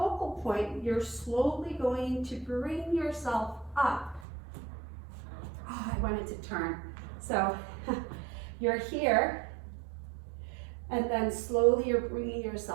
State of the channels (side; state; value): left; drops out; at 4.2 s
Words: point, you're slowly going to bring yourself up. Oh, I wanted to turn. So you're here, and then slowly you're bringing